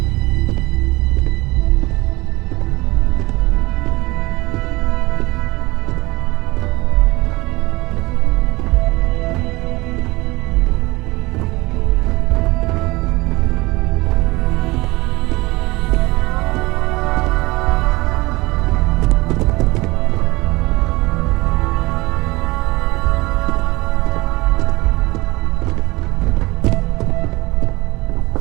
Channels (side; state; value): left; quieter; 22.1 dB